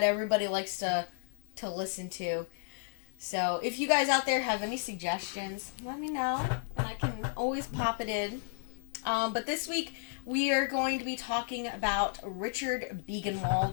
everybody likes to listen to. So if you guys out there have any suggestions, let me know and I can always pop it in. But this week we are going to be talking about Richard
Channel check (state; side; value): silent; right; digital silence